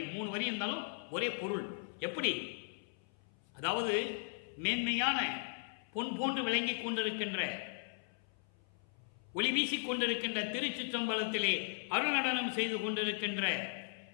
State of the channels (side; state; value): right; silent; 53 dB below the other